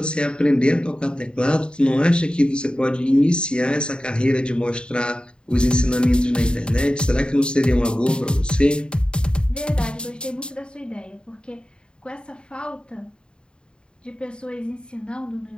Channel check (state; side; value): late; right; 0.051 ms